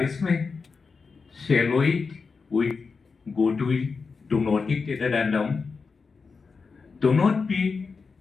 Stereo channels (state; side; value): quieter; right; 4.8 dB